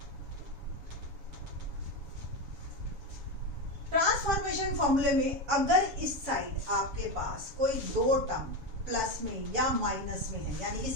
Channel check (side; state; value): left; late; 7.2 ms